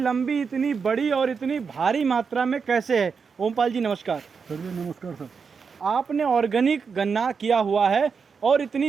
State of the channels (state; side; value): quieter; left; 5.7 dB